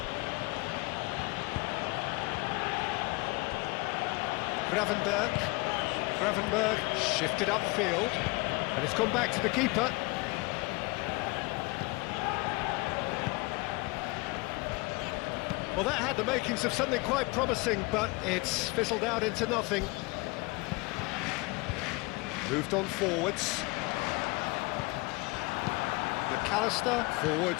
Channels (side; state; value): right; quieter; 25.2 dB